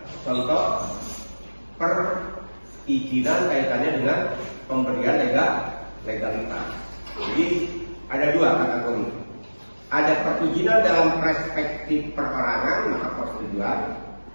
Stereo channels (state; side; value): inverted; both; correlation -1.00